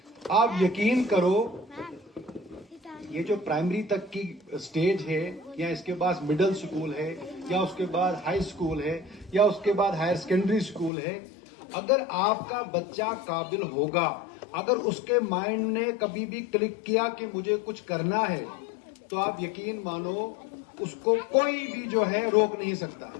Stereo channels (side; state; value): right; drops out; at 10.9 s